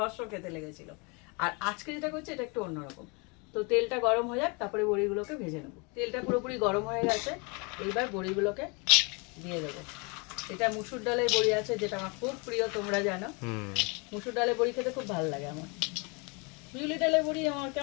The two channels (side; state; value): right; quieter; 31.2 dB